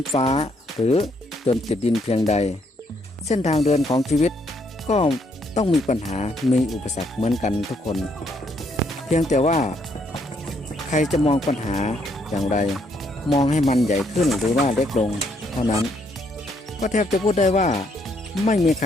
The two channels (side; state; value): both; normal; correlation 0.72